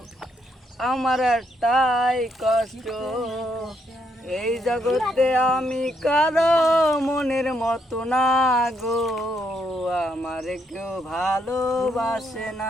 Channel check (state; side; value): normal; both; correlation 0.75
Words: আমার একটাই কষ্ট। এই জগতে আমি কারো মনের মতো না গো, আমার কেউ ভালোবাসে